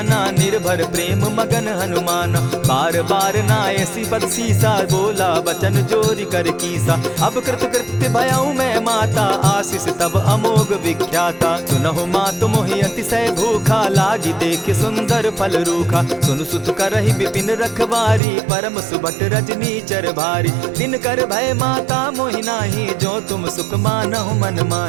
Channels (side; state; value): left; drops out; at 18.2 s